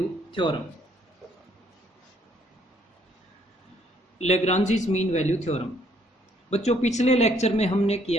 theorem. Lagrange's mean value theorem बच्चों, पिछले लेक्चर में हमने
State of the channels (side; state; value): both; normal; correlation 0.66